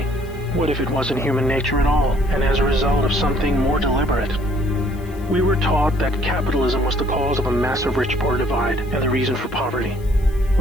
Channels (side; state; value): left; noise; hiss, 25 dB below the sound